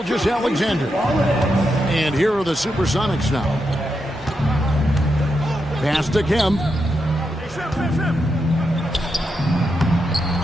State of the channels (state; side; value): noise; left; hum, 24 dB below the sound